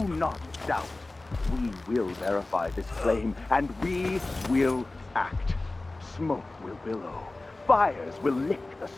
not doubt. We will verify this claim, and we will act. Smoke will billow. Fires will lick the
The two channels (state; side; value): quieter; right; 3.0 dB